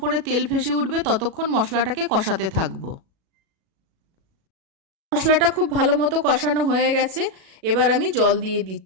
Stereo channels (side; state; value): left; late; 37 ms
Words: তেল ভেসে উঠবে ততক্ষণ মশলাটাকে কষাতে থাকবো। মশলাটা খুব ভালো মতো কষানো হয়ে গেছে, এবার আমি জল দিয়ে